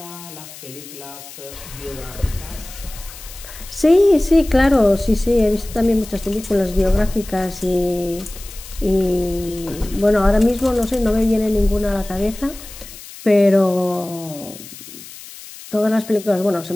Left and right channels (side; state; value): left; noise; hiss, 16 dB below the sound